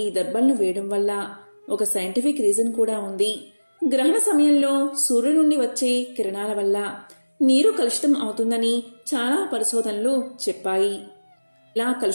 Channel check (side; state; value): both; inverted; correlation -1.00